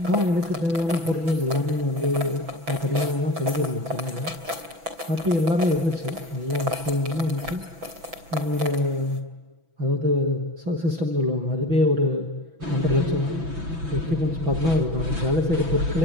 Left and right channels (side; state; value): left; late; 6.1 ms